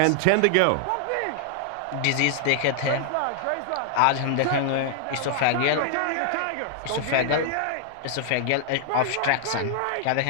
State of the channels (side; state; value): both; different; correlation 0.00